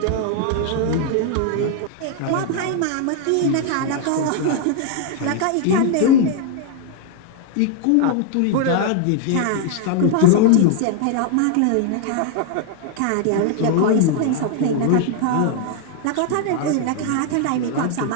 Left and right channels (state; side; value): different; both; correlation 0.00